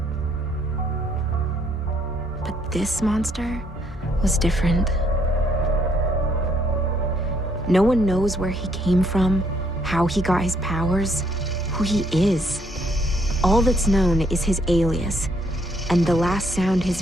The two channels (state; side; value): normal; both; correlation 0.69